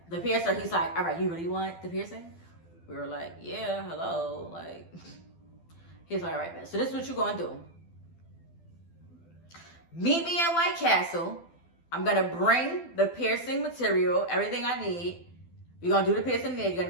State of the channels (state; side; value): late; right; 12 ms